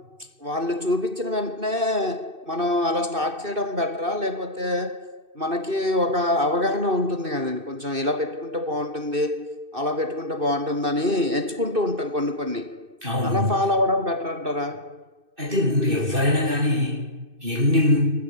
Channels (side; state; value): left; late; 2.6 ms